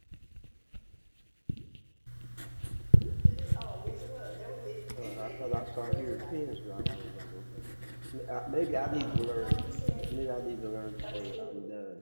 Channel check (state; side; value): inverted; both; correlation -1.00